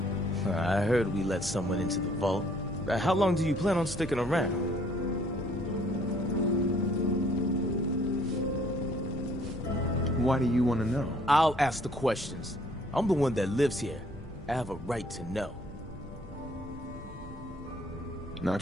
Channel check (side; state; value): both; normal; correlation 0.61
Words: I heard we let someone into the vault. How long do you plan on sticking around? Why do you want to know? I'll ask the questions. I'm the one that lives here. I have a right to know. Not